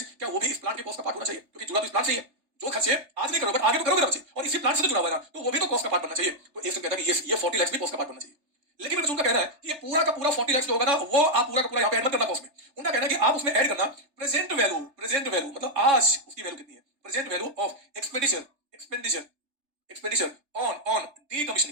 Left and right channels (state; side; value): late; left; 3.3 ms